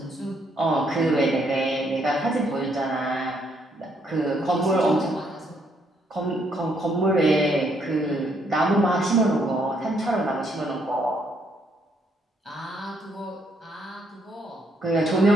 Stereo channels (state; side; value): normal; both; correlation 0.71